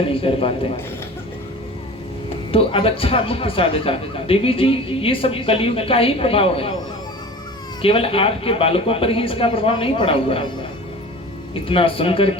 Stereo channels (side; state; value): both; normal; correlation 0.38